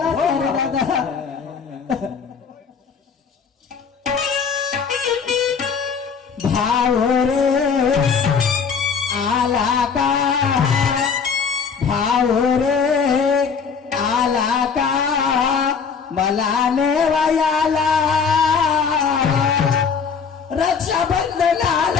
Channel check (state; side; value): quieter; right; 6.0 dB